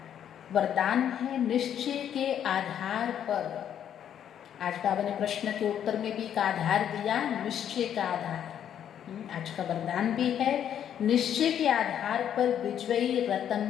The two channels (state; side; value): quieter; right; 9.6 dB